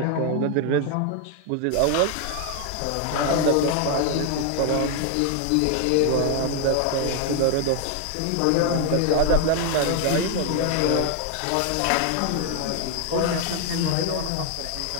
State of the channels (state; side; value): different; both; correlation 0.00